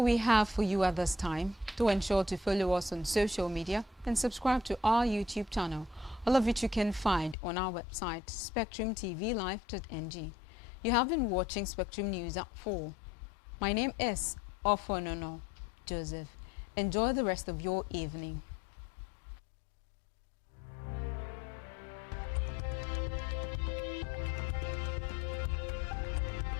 we have for you at this time. Do ensure to follow us on social media and subscribe to our YouTube channel, all of which you can find on our website, spectrumtvlive.ng. You have been watching Spectrum News at 4. My name is Ofonono Joseph. Enjoy the rest of your evening.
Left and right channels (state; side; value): drops out; right; at 7.4 s